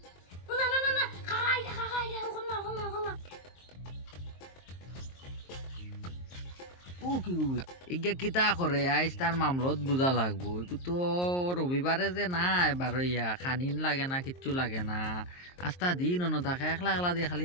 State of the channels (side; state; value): right; late; 23 ms